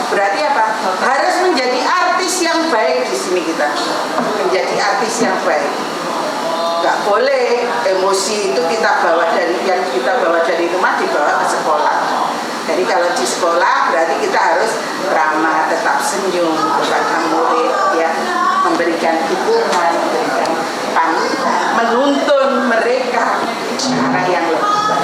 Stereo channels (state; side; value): identical; both; correlation 1.00